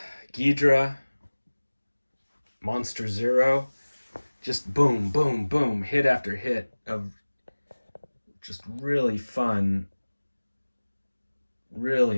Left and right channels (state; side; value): inverted; both; correlation -1.00